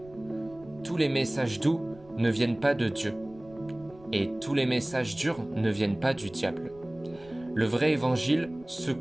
Tous les messages doux ne viennent pas de Dieu, et tous les messages durs ne viennent pas du diable. Le vrai évangile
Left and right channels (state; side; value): noise; right; rumble, 23 dB below the sound